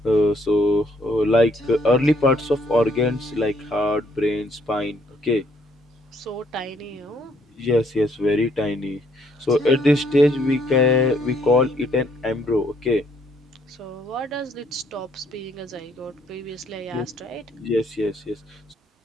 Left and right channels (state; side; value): normal; both; correlation 0.68